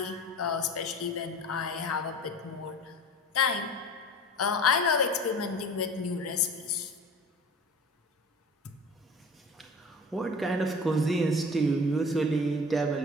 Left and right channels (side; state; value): both; normal; correlation 0.39